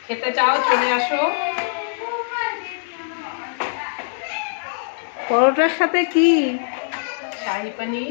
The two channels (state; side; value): silent; right; digital silence